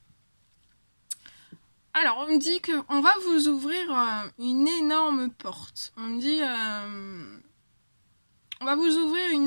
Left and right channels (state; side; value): inverted; both; correlation -1.00